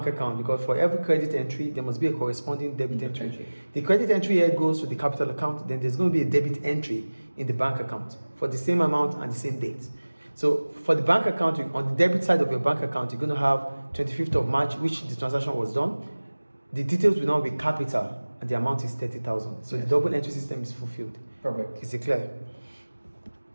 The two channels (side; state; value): both; inverted; correlation -1.00